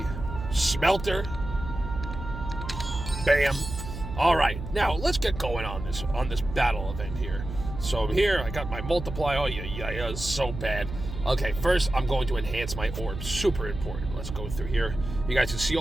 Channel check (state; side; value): noise; right; hum, 8 dB below the sound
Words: smelter. Bam. All right, now let's get going on this battle event here. So here, I got my multiplier. Oh, yeah, it's so bad. Okay, first, I'm going to enhance my orbs. Super important. Let's go through here. You guys can see